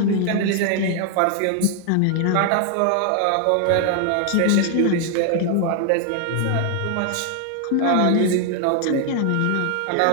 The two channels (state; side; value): different; both; correlation 0.00